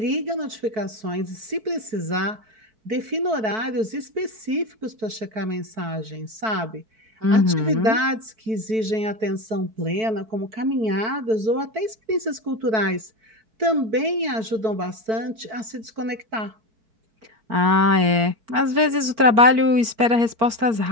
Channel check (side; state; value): left; late; 4.6 ms